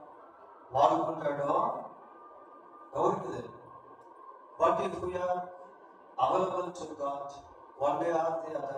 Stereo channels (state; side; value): identical; both; correlation 1.00